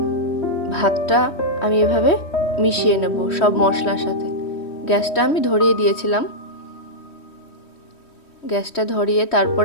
ভাতটা আমি এভাবে মিশিয়ে নেব সব মশলার সাথে। গ্যাসটা আমি ধরিয়ে দিয়েছিলাম। গ্যাসটা ধরিয়ে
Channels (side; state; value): right; late; 3.1 ms